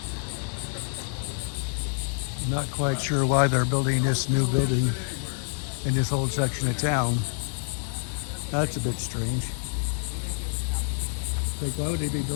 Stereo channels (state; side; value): silent; right; digital silence